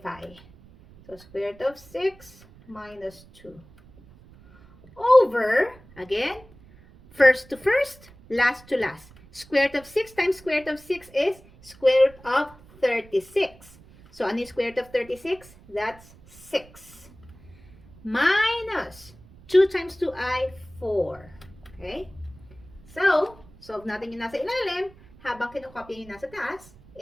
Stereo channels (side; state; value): right; noise; rumble, 24 dB below the sound